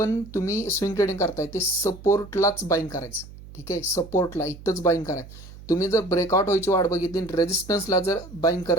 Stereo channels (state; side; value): noise; right; hum, 17 dB below the sound